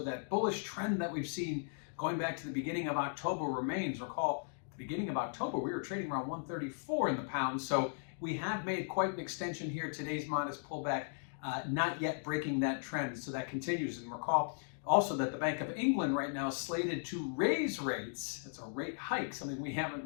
that bullish trend that we've seen going back to the beginning of October remains. Recall, at the beginning of October, we were trading around 134 in the pound. So we have made quite an extension here. Today's modest pullback, not yet breaking that trend. So that continues. And recall also that the Bank of England right now is slated to raise rates. It's a rate hike, something we haven't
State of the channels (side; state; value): right; silent; digital silence